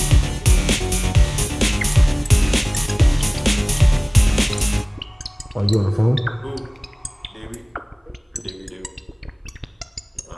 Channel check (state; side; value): identical; both; correlation 1.00